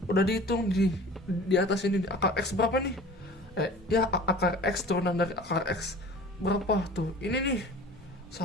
udah dihitung di atas ini akar X berapa nih? Ya akar X turunan dari akar X berapa tuh? Ini nih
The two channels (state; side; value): normal; both; correlation 0.43